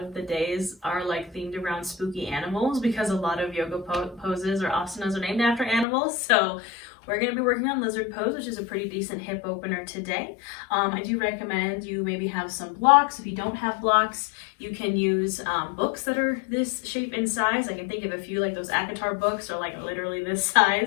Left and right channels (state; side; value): drops out; right; at 5.9 s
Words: the days are like themed around spooky animals because a lot of yoga poses or asanas are named after animals. So we're going to be working on lizard pose, which is a pretty decent hip opener today. I do recommend you maybe have some blocks. If you don't have blocks, you can use books that are this shape and size. I can think of a few, like those Akatar books are like literally this